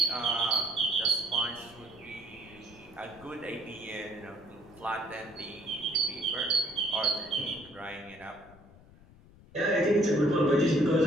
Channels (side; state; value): left; noise; rumble, 23 dB below the sound